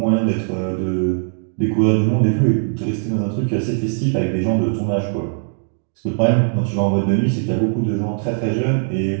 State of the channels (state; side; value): silent; left; digital silence